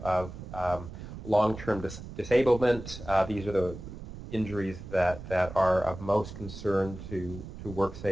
long-term disablement. These are the injuries that are of most concern to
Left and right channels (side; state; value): right; noise; rumble, 12 dB below the sound